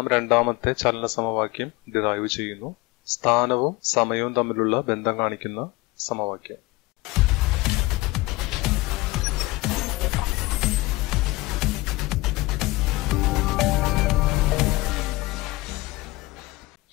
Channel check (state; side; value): quieter; right; 21.1 dB